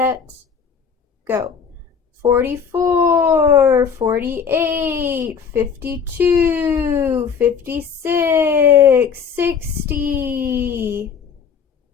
go. 44, 48, 52, 56, 60.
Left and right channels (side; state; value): right; quieter; 6.5 dB